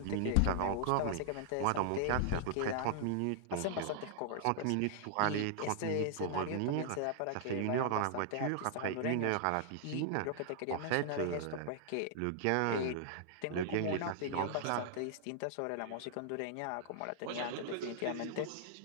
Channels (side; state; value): both; different; correlation -0.01